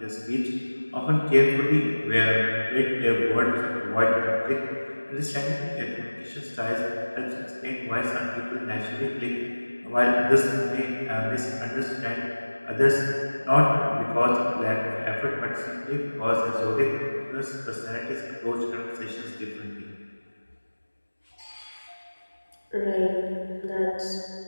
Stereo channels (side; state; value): both; inverted; correlation -1.00